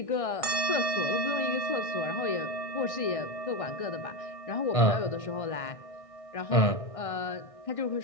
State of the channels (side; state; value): right; late; 1.6 ms